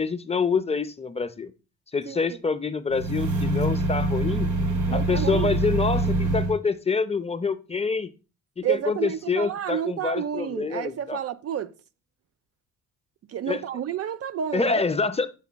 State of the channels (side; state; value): both; normal; correlation 0.43